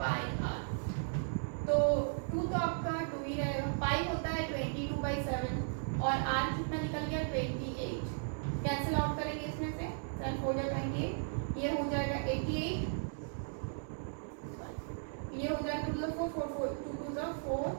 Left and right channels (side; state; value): left; silent; digital silence